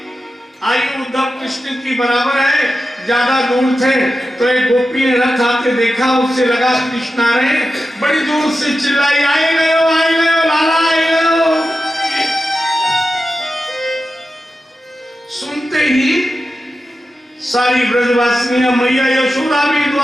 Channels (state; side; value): normal; both; correlation 0.91